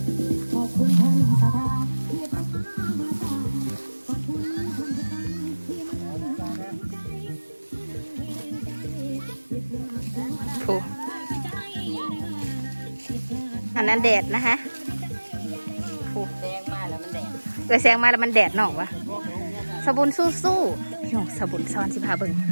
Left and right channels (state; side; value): inverted; both; correlation -1.00